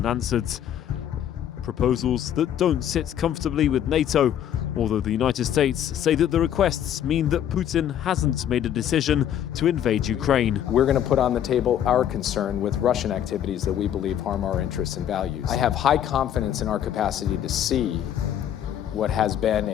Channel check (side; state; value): right; quieter; 10.2 dB